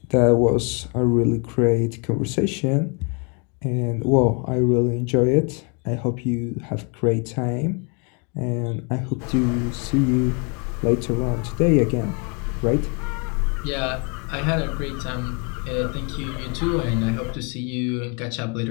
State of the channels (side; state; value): right; quieter; 35.3 dB